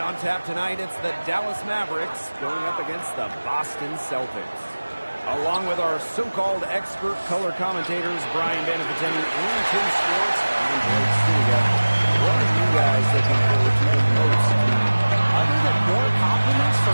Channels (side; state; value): both; inverted; correlation -1.00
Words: tap tonight, it's the Dallas Mavericks going up against the Boston Celtics. Along with our so-called expert color commentators, Brian Banafiteni and Tim Schwartz, I'm Blake Stiga. What are you guys looking forward to the most tonight? Other than more compliments